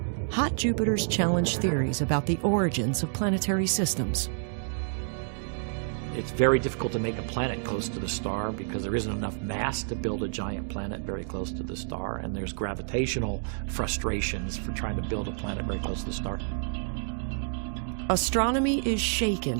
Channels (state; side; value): silent; left; digital silence